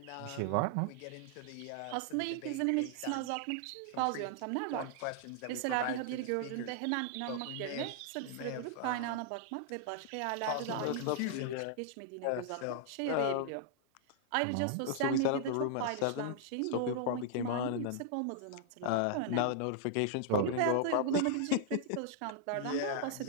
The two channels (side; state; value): both; different; correlation -0.01